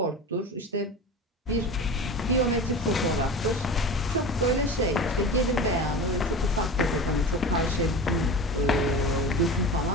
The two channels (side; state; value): both; normal; correlation 0.32